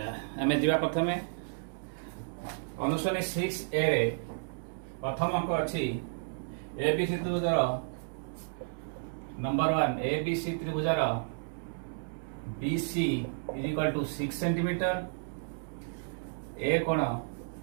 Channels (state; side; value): silent; left; digital silence